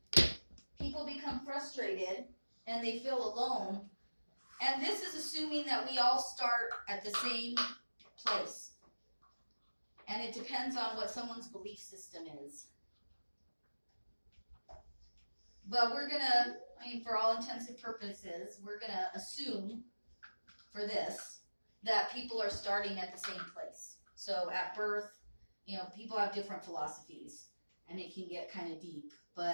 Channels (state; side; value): inverted; both; correlation -1.00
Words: People become frustrated and they feel alone. And this is assuming that we all start at the same place. And it depends on what someone's belief system is. But we're going to, for all intents and purposes, we're going to assume for this that people are starting at the same place. So at birth, people have different philosophies and it can get kind of deep.